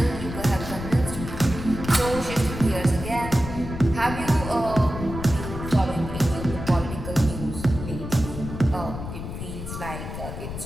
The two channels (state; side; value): noise; left; rumble, 8 dB below the sound